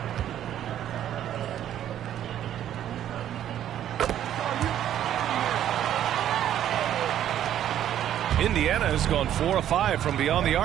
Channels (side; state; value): left; quieter; 11.0 dB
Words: Indiana has gone 4 of 5 from beyond the